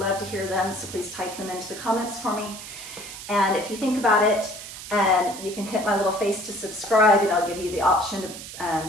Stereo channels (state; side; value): noise; right; hiss, 12 dB below the sound